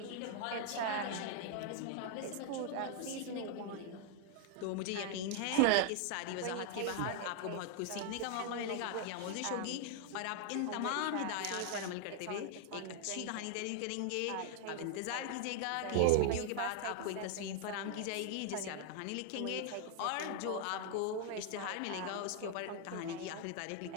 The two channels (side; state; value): both; different; correlation 0.00